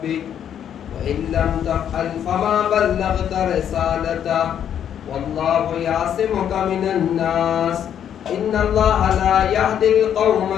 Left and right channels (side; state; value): right; quieter; 9.4 dB